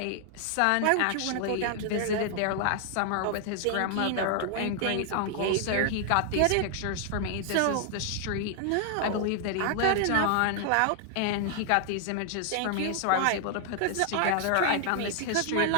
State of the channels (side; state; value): both; different; correlation 0.00